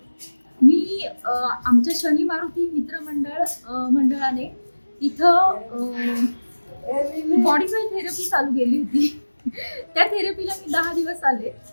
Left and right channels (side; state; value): both; inverted; correlation -1.00